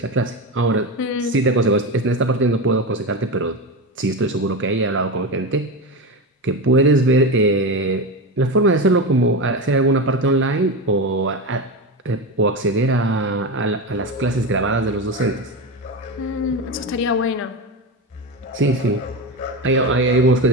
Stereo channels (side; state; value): both; normal; correlation 0.19